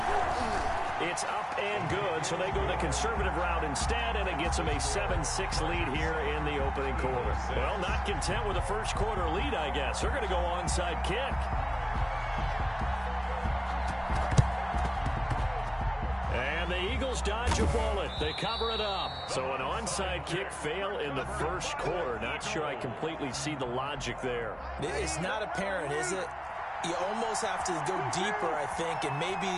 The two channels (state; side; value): identical; both; correlation 1.00